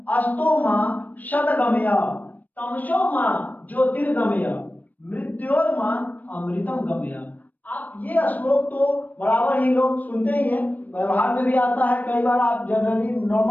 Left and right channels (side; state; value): right; late; 0.082 ms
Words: अस्तोमा शतगमय तमसोमा ज्योतिर्गमय मृत्योर्मा अमृतम गमय। आप ये श्लोक तो बराबर ही लोग सुनते ही हैं, व्यवहार में भी आता है, कई बार आप जनरली